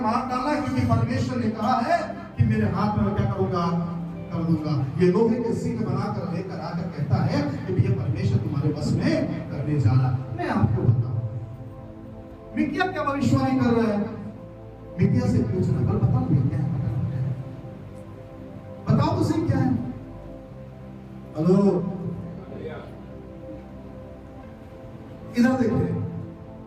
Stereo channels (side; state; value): both; identical; correlation 1.00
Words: मार डाला, क्योंकि परमेश्वर ने कहा है कि मेरे हाथ में क्या करूंगा, कर दूंगा। ये लोहे के सिंह बनाकर लेकर आकर कहता है कि भैया परमेश्वर तुम्हारे बस में करने जा रहा। मैं आपको बताऊं, मिकिया क्या भविष्यवाणी कर रहा है? मिकिया से पूछना, कल बताओ क्या है, बताओ तो सही क्या है। हेलो, इधर देखिए,